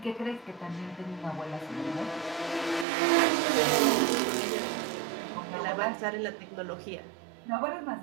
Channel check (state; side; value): drops out; left; at 2.9 s